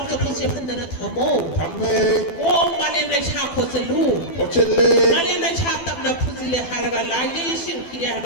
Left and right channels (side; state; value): right; late; 12 ms